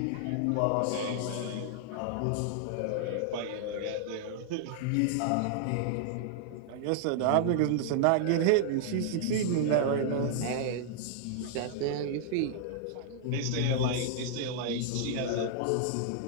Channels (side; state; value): both; different; correlation -0.01